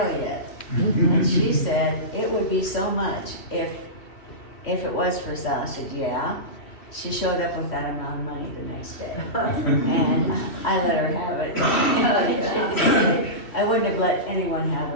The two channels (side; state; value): right; late; 2.7 ms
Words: yet. And she said, it would be so much if it was for sale. I said, yeah. She showed up with that amount of money the next day. And I let her have it. I wouldn't have let anyone have